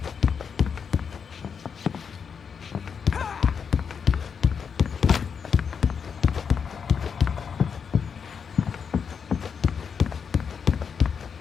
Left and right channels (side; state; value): right; quieter; 6.5 dB